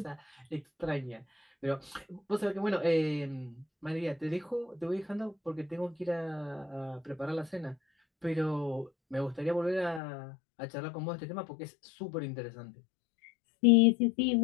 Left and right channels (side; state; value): right; drops out; at 10.0 s